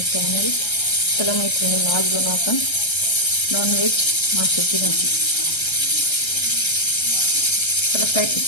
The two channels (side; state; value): right; late; 1.3 ms